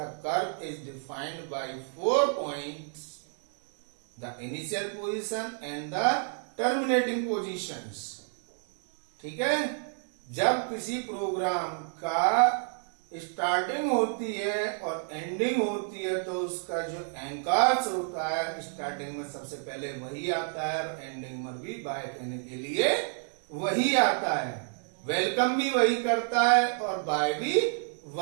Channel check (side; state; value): left; silent; 57 dB below the other